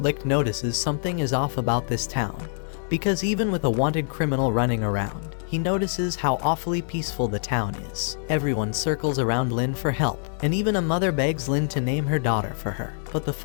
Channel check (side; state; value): right; silent; 61 dB below the other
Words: notices something is off about this town, because even with a wanted criminal running around, he notices how awfully peaceful the town is. Everyone circles around Lin for help, and even a mother begs Lin to name her daughter for her, but the